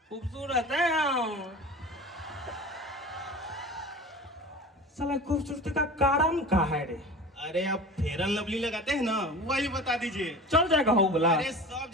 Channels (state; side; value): normal; both; correlation 0.36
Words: खूबसूरत है हम। साला खूबसूरती का कारण क्या है रे? अरे आप फेयर एंड लवली लगाते हैं ना, वही बता दीजिए। चल जाएगा हो बोला। अरे सब